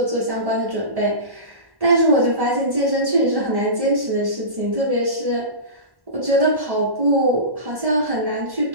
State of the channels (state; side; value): late; left; 1.1 ms